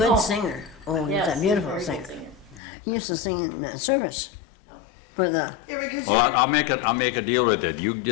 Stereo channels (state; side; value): drops out; right; at 2.6 s